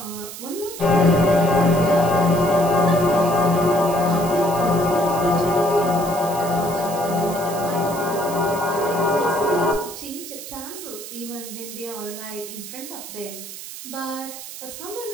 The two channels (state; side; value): noise; right; hiss, 12 dB below the sound